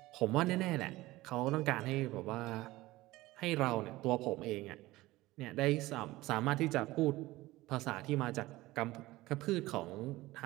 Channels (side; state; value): left; quieter; 18.5 dB